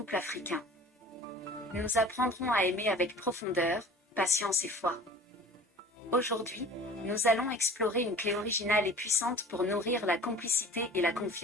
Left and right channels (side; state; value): both; normal; correlation 0.43